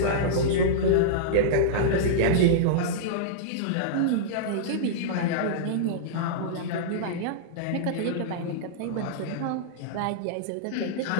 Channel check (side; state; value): both; different; correlation -0.03